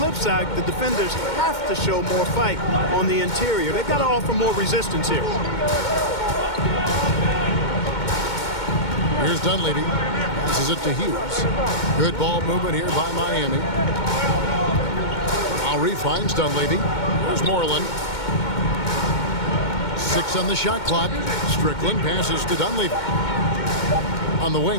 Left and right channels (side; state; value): right; late; 2.2 ms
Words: side, the defenders have to show more fight on the interior. They've got to offer more resistance here. Here's Dunleavy. Passes it to Hughes. Good ball movement here by Miami. Lowry finds Dunleavy. Here's Moreland. 6 on the shot clock. Strickland passes to Dunleavy. On the